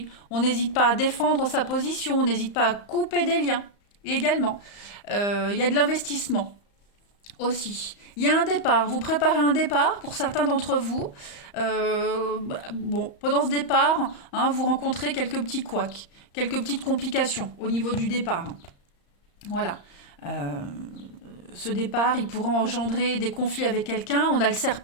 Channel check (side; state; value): right; late; 34 ms